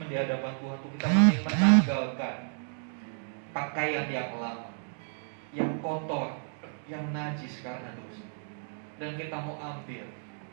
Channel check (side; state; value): left; silent; digital silence